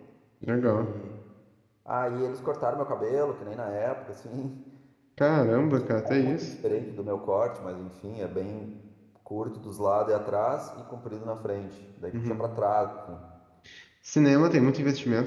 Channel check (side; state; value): both; identical; correlation 1.00